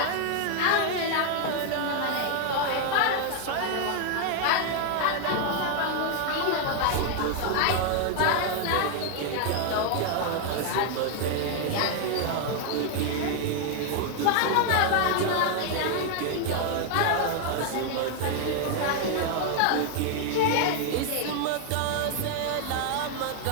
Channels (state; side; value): different; both; correlation 0.00